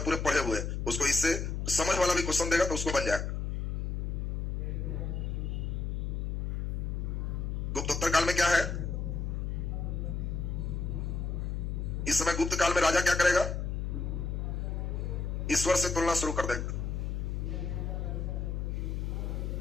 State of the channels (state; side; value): noise; left; hum, 1 dB below the sound